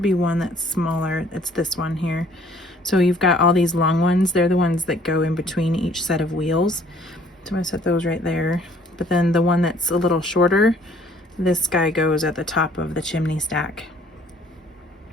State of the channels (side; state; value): both; normal; correlation 0.58